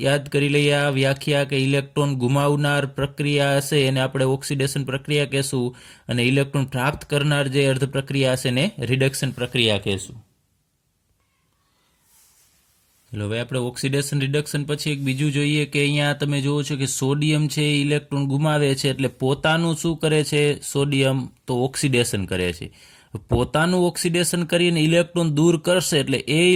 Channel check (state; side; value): identical; both; correlation 1.00